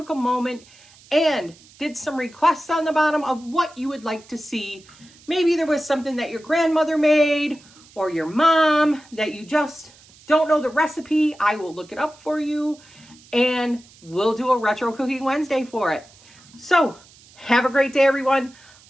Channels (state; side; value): noise; right; hiss, 26 dB below the sound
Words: a moment and did some requests on the bottom of what you would like to see. Maybe there was something that your grandmother made or your mom that you just don't know the recipe. I will look it up for you, and we'll do a Retro Cooking Wednesday for it. So have a great day, everyone.